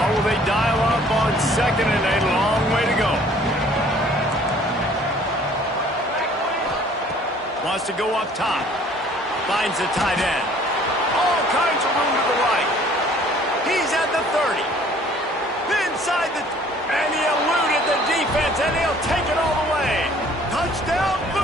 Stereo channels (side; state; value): both; normal; correlation 0.55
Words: will they dial up on second and a long way to go? Wants to go up top. Finds the tight end. All kinds of room to the right. He's at the 30. Inside the... And he eluded the defense, and he'll take it all the way. Touchdown,